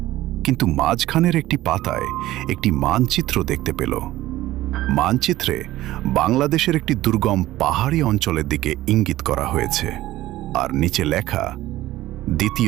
কিন্তু মাঝখানের একটি পাতায় একটি মানচিত্র দেখতে পেল। মানচিত্রে বাংলাদেশের একটি দুর্গম পাহাড়ি অঞ্চলের দিকে ইঙ্গিত করা হয়েছে, আর নিচে লেখা,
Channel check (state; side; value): quieter; left; 15.7 dB